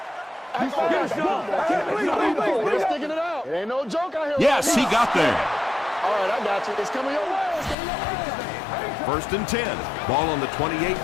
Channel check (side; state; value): right; drops out; at 7.8 s